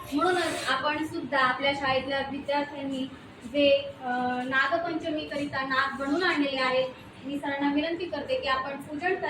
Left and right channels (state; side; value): identical; both; correlation 1.00